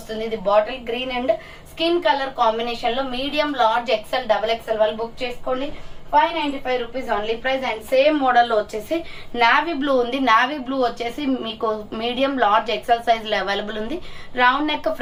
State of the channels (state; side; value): identical; both; correlation 1.00